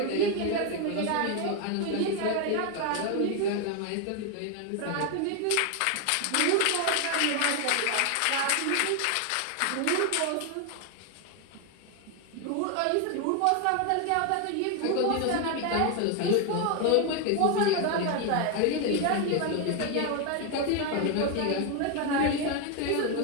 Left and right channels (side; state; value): both; different; correlation 0.01